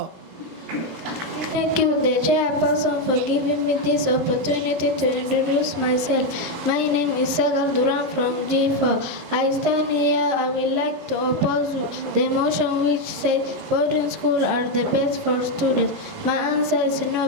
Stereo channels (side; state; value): left; late; 23 ms